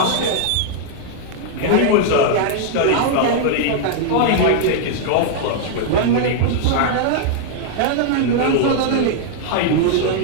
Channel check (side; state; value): both; different; correlation -0.01